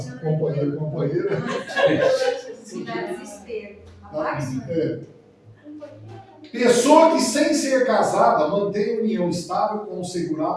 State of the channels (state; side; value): identical; both; correlation 1.00